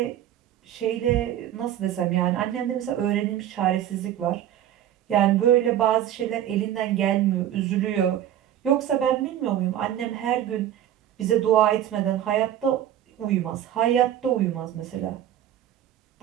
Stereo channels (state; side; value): quieter; left; 11.3 dB